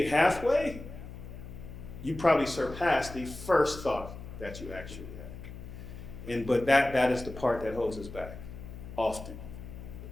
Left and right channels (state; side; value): noise; left; hum, 12 dB below the sound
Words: halfway, you probably surpass the first thought that you actually had. But that is the part that holds us back often,